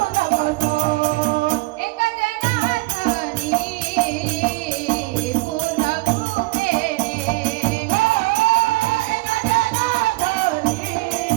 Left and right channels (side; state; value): left; quieter; 22.7 dB